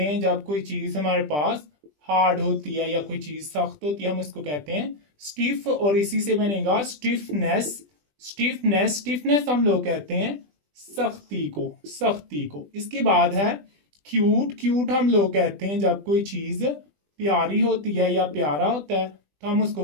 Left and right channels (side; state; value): left; late; 20 ms